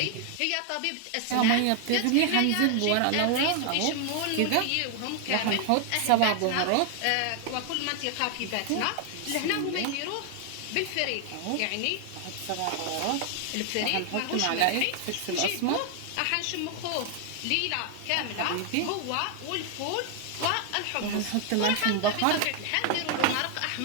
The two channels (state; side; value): different; both; correlation 0.00